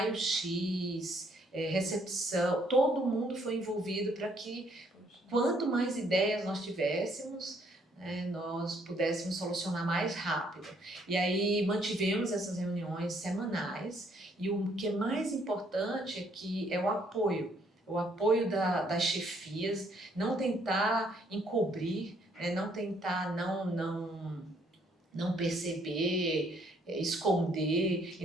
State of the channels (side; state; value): both; normal; correlation 0.67